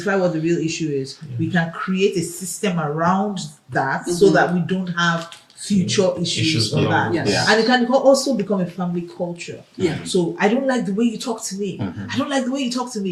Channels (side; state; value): both; identical; correlation 1.00